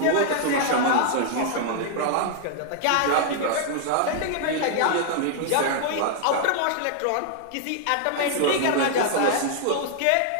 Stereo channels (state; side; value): different; both; correlation 0.00